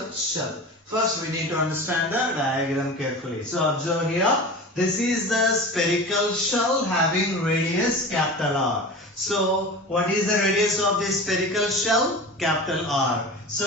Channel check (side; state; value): both; normal; correlation 0.33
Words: shell. First we need to understand the diagram carefully. So observe here. This is the spherical shell having radius capital R. So what is the radius of this spherical shell? Capital R.